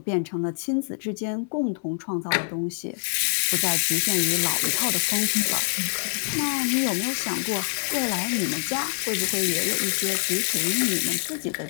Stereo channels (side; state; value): right; silent; 62 dB below the other